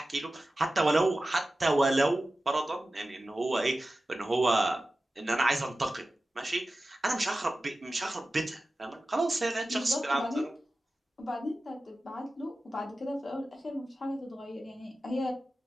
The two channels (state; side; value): normal; both; correlation 0.95